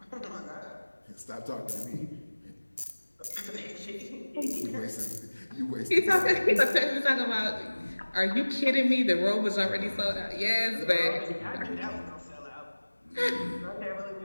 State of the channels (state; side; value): inverted; both; correlation -1.00